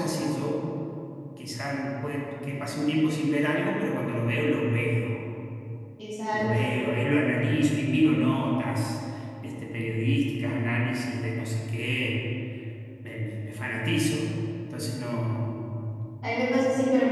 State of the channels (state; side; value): identical; both; correlation 1.00